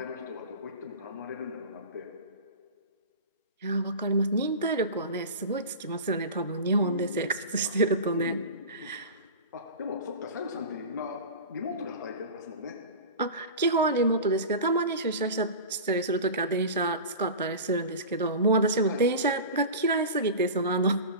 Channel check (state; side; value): inverted; both; correlation -0.31